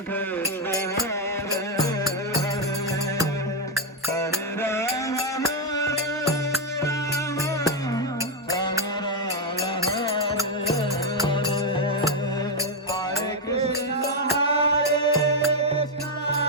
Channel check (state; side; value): normal; both; correlation 0.02